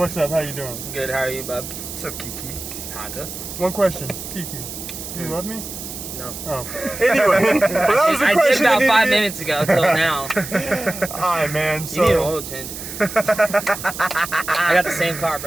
up? How you doing? Good, how are you, bub? What's up, Kiki? Parker? One question, Kiki. Do you love me? No. Oh. Anyway, but that was the I question. did about 5 minutes ago till now. Alright, man. So, You need an oil change. I got the same car,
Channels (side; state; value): right; noise; hiss, 9 dB below the sound